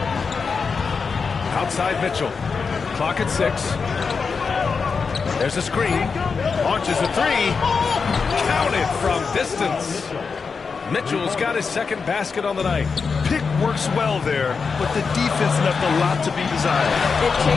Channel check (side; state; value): right; quieter; 5.2 dB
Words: Outside Mitchell. Clock at 6. There's a screen. Launches a 3. Counted from distance. Mitchell's got his second basket on the night. Pick works well there, but the defense left a lot to be desired. It